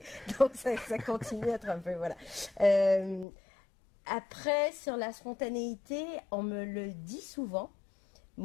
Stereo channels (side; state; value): right; drops out; at 3.2 s